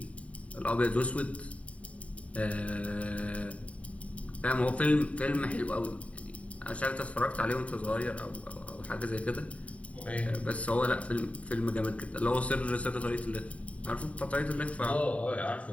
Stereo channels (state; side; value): late; right; 0.066 ms